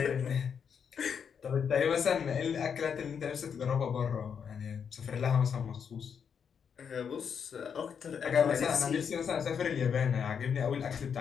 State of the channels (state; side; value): quieter; right; 7.1 dB